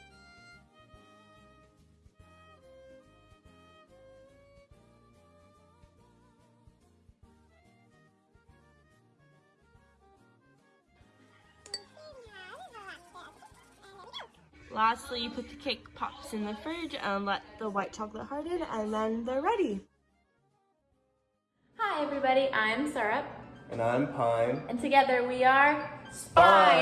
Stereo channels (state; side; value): identical; both; correlation 1.00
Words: Lastly, you put the cake pops in the fridge and let the white chocolate harden, and then they're ready. Hi everybody, I'm Syrup. And I'm Pine. And together we are